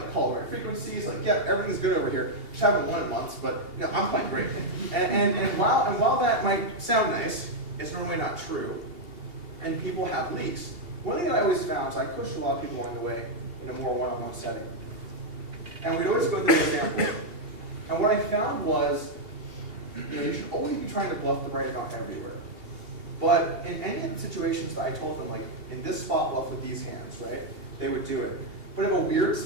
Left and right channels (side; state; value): left; late; 2.8 ms